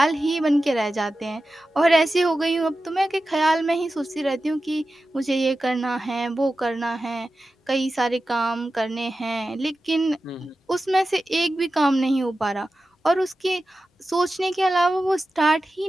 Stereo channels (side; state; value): both; normal; correlation 0.93